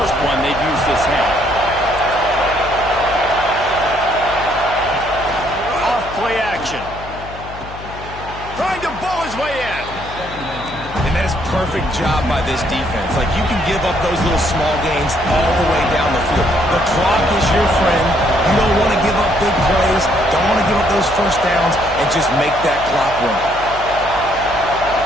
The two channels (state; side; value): noise; left; hum, 14 dB below the sound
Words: one they've used this half. Off play action. Trying to bowl his way in. And that is perfect job by this defense. Like, you can give up those little small gains all the way down the field. The clock is your friend. You don't want to give up big plays. Don't want to give up those 1st downs, and just make that clock run.